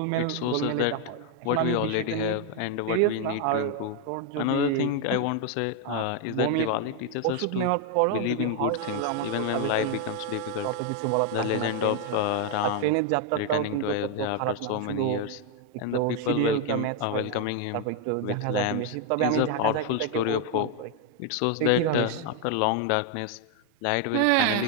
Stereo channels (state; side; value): different; both; correlation 0.01